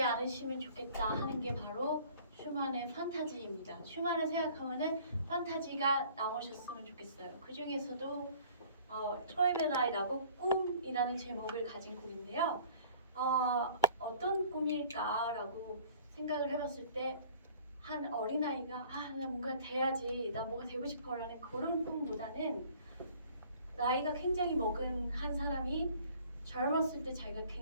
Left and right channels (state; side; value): inverted; both; correlation -0.52